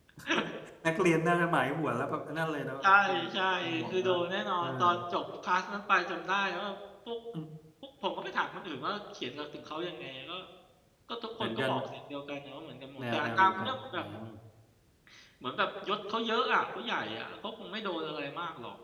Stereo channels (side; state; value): both; identical; correlation 1.00